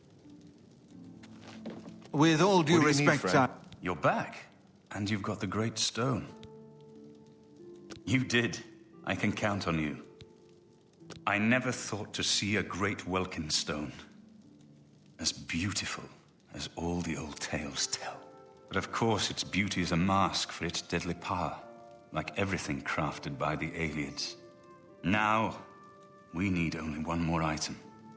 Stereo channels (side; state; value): both; identical; correlation 1.00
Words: With all due respect, You're back, and you've got the Great Stone. You did. I can count on you. I never thought to see a great Welkin stone. As beautiful as all the old tales tell. But of course, its beauty is a mask for its deadly power, like everything crafted by the Aliens. Now, we need only one more item,